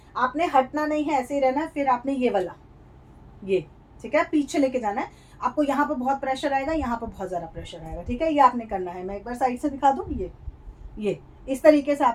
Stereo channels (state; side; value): identical; both; correlation 1.00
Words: आपने हटना नहीं है, ऐसे ही रहना है। फिर आपने ये वाला, ये, ठीक है, पीछे लेके जाना है। आपको यहाँ पर बहुत प्रेशर आएगा, यहाँ पर बहुत ज़्यादा प्रेशर आएगा, ठीक है। ये आपने करना है, मैं एक बार साइड से दिखा दूँ, ये इस तरीके से